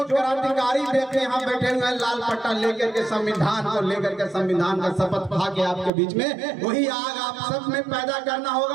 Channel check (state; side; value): drops out; left; at 5.9 s